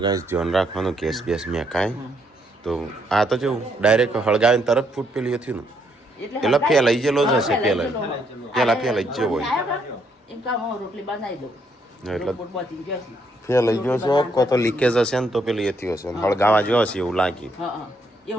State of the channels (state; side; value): normal; both; correlation 0.73